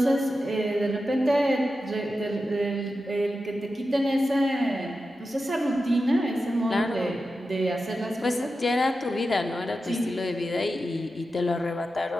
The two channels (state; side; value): normal; both; correlation 0.91